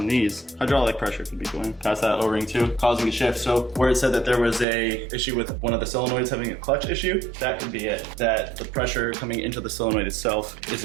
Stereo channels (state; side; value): drops out; left; at 4.7 s